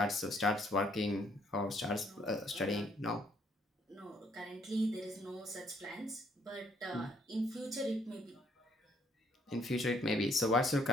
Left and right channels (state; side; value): normal; both; correlation 0.67